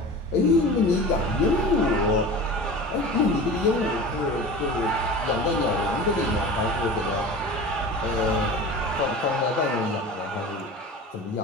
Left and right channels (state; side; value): normal; both; correlation 0.35